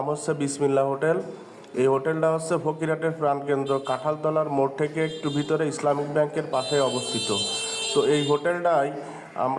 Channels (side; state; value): both; identical; correlation 1.00